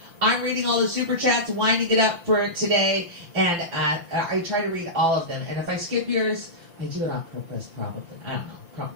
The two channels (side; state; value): left; late; 5.8 ms